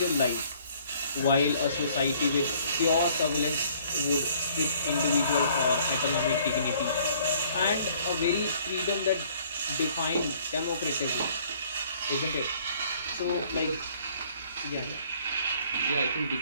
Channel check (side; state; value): both; inverted; correlation -0.59